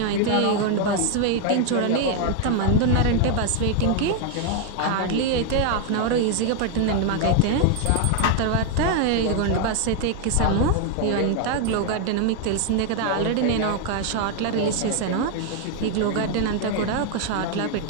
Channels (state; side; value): different; both; correlation 0.01